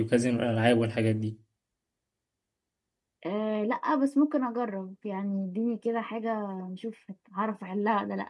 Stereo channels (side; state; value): both; identical; correlation 1.00